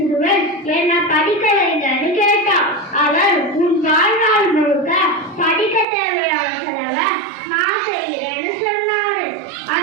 என்ன படிக்க வைங்கன்னு கேட்டான். அவர் உன் வாழ்நாள் முழுக்க படிக்க தேவையான செலவை நான் செய்கிறேன்னு சொன்னாரு.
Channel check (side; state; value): left; drops out; at 5.9 s